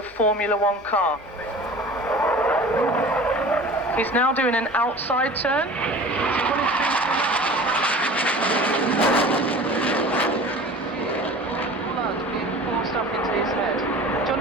Formula 1 car. He's now doing an outside turn. Blood being forced up into his head.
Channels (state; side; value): normal; both; correlation 0.40